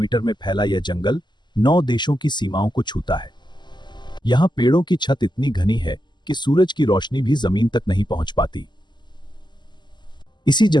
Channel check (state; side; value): late; right; 0.21 ms